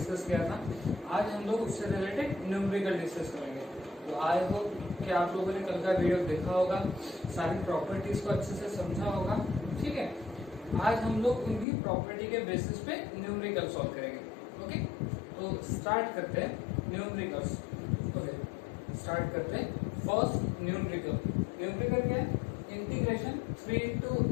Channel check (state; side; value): drops out; right; at 11.7 s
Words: किया था। आज हम लोग उससे रिलेटेड न्यूमेरिकल डिस्कस करेंगे। तो आई होप कि आप लोगों ने कल का वीडियो देखा होगा, सारी प्रॉपर्टीज को अच्छे से समझा होगा। ठीक है, आज हम लोग उनकी प्रॉपर्टी के बेसिस पे न्यूमेरिकल सॉल्व करेंगे। ओके, तो स्टार्ट करते हैं न्यूमेरिकल्स। ओके, स्टार्ट करते हैं फर्स्ट न्यूमेरिकल। न्यूमेरिकल क्या है? Integration 3 to